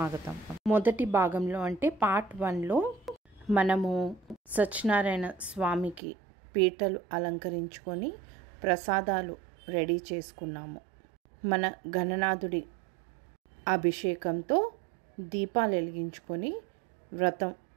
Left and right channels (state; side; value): drops out; left; at 6.0 s